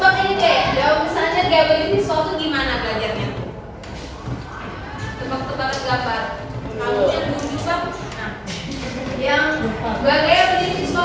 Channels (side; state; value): both; identical; correlation 1.00